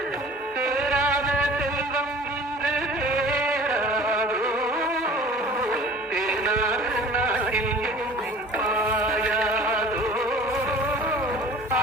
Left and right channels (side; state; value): both; normal; correlation 0.45